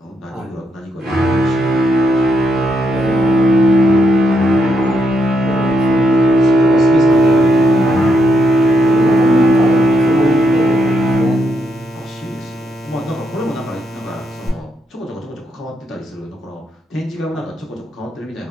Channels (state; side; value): normal; both; correlation 0.79